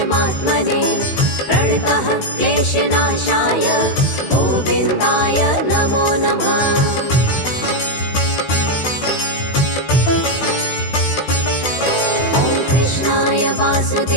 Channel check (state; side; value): late; right; 16 ms